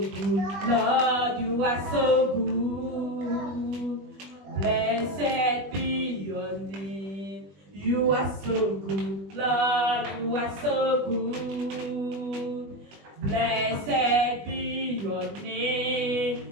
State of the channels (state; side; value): late; left; 20 ms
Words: Lord, you are so good. Blessed be your name. You are so good, Lord, you are so good. Blessed be your